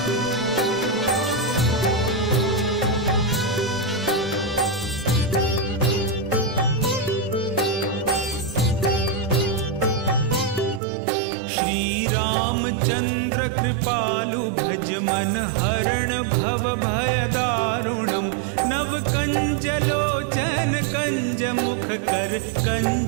रामचंद्र कृपालु भज मन हरण भव भय दारुणम् नव कंज लोचन कंज मुख कर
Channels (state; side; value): drops out; left; at 10.8 s